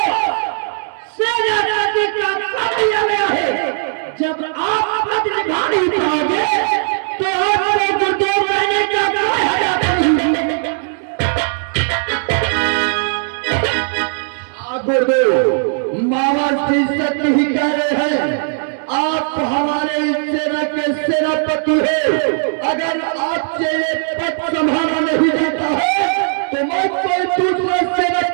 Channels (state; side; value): silent; left; digital silence